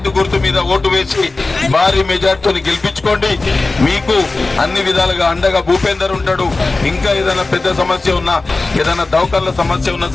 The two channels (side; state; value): right; quieter; 3.4 dB